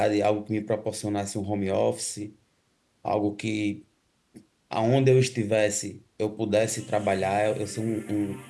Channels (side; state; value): both; identical; correlation 1.00